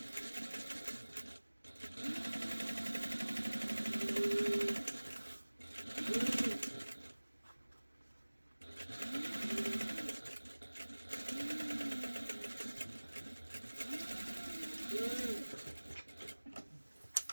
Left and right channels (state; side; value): inverted; both; correlation -1.00